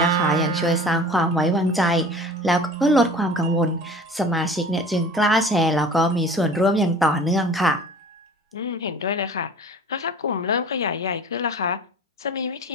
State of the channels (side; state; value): both; normal; correlation 0.43